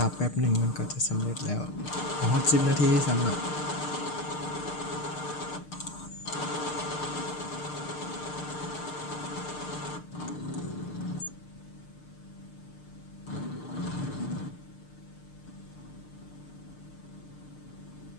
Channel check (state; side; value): late; right; 6.6 ms